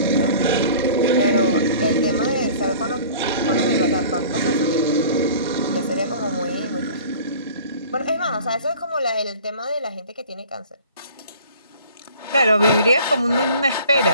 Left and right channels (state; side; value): inverted; both; correlation -0.46